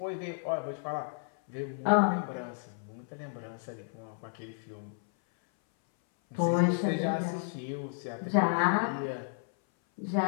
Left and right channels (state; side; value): silent; right; 56 dB below the other